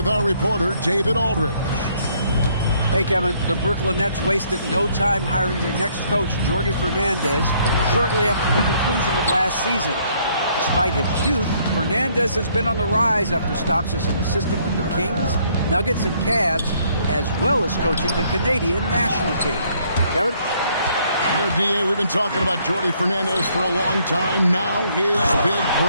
our reporter, David Aldridge. Hey, Kevin, the Brooklyn Nets wasted no time hiring their next coach, Jordi Fernandez, shortly after the conclusion of last season. Despite his youth, Fernandez has been on the rise after stops as an assistant with the Kings, Nuggets, and Cavs, as well as coaching the Canadian national team. Kevin? You know, D.A., we've been talking about Jordi Fernandez for a long time. Now his big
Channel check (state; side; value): inverted; both; correlation -0.66